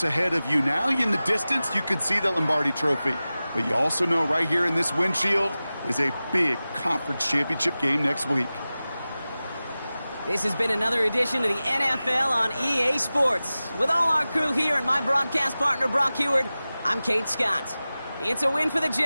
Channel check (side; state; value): both; inverted; correlation -0.96